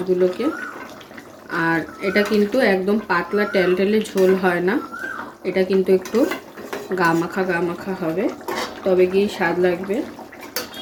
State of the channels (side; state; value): both; identical; correlation 1.00